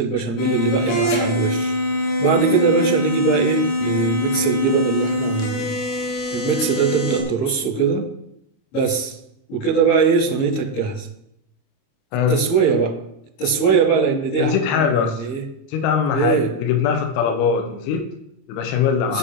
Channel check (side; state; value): right; late; 26 ms